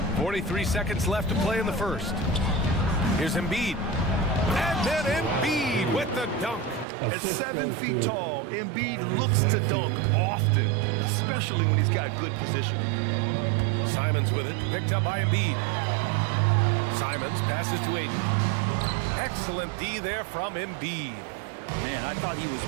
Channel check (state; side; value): drops out; left; at 6.9 s